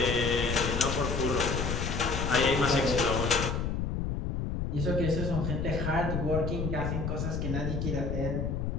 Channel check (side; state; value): left; noise; rumble, 1 dB below the sound